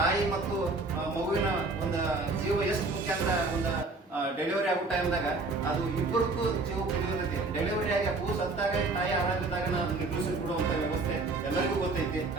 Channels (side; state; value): left; quieter; 3.5 dB